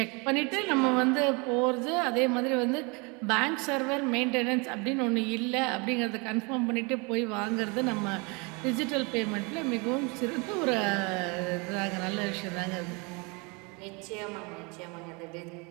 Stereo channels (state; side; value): quieter; left; 30.0 dB